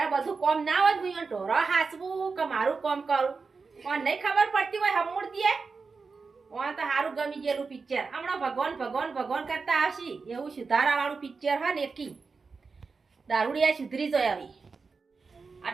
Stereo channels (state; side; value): quieter; left; 4.7 dB